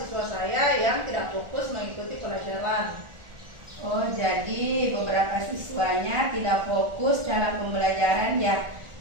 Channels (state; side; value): late; left; 1.4 ms